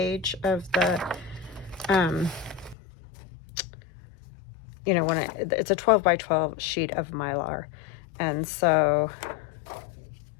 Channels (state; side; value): drops out; right; at 2.8 s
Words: of the, you know, when it's a 12 by 12 sheet of Mylar. And so